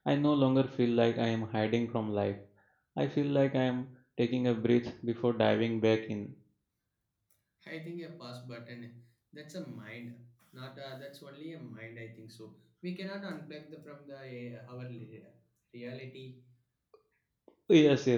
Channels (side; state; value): both; identical; correlation 1.00